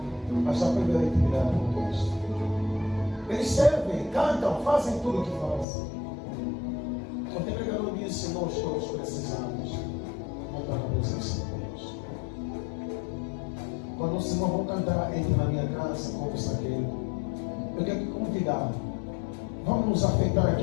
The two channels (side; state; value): right; drops out; at 5.7 s